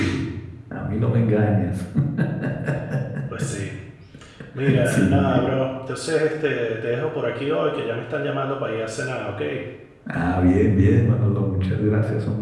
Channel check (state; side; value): identical; both; correlation 1.00